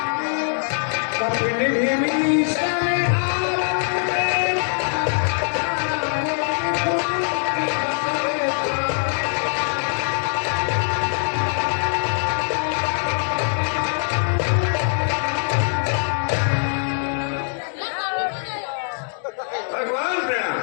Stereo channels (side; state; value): right; silent; 64 dB below the other